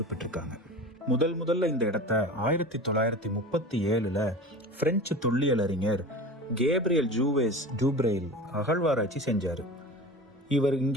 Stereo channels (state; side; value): normal; both; correlation 0.34